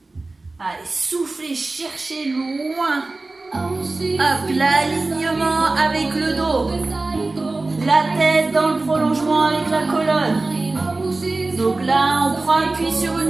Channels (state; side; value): quieter; left; 3.3 dB